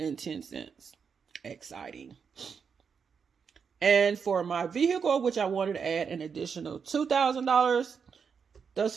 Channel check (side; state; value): left; quieter; 6.3 dB